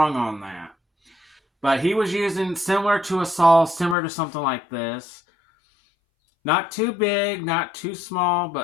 on that. But he was using similar to a saw, similar to something like this. Not too big, not too small,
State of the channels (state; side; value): drops out; right; at 4.0 s